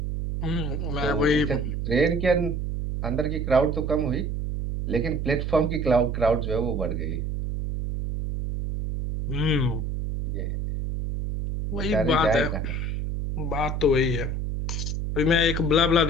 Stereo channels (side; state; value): right; noise; hum, 2 dB below the sound